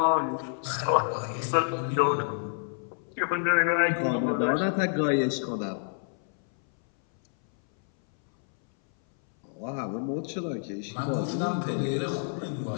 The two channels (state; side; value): silent; right; 59 dB below the other